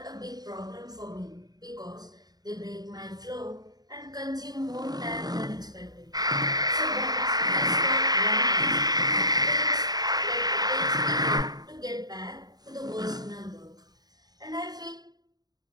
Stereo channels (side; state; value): left; late; 0.19 ms